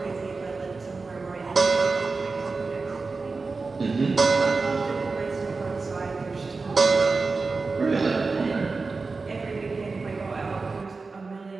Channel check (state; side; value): quieter; left; 4.1 dB